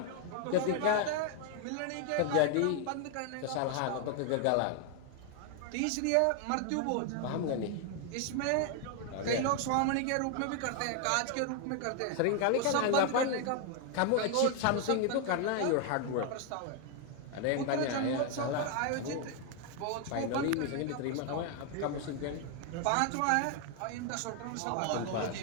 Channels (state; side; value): different; both; correlation 0.01